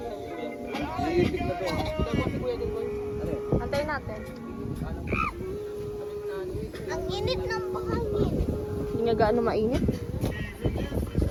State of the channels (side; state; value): both; identical; correlation 1.00